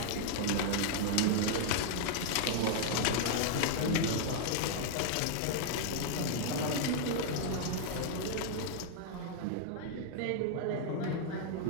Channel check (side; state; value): both; different; correlation -0.01